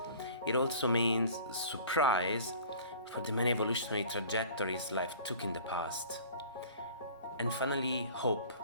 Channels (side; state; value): both; inverted; correlation -0.45